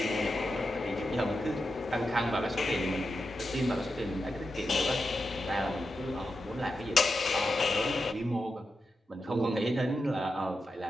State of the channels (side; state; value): both; normal; correlation 0.88